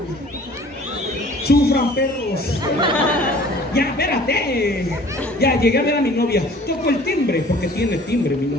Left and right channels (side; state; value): both; normal; correlation 0.49